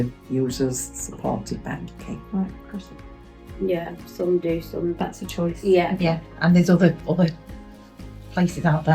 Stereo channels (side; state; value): both; identical; correlation 1.00